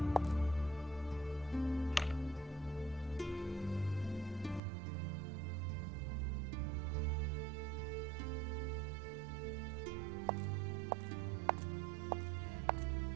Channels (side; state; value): left; drops out; at 4.6 s